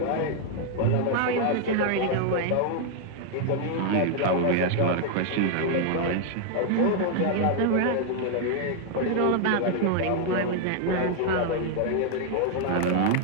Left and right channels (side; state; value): both; different; correlation 0.00